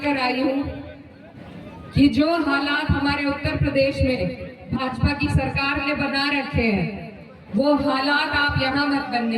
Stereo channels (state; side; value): identical; both; correlation 1.00